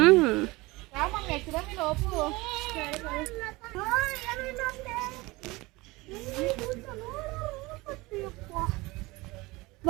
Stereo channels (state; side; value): quieter; left; 22.3 dB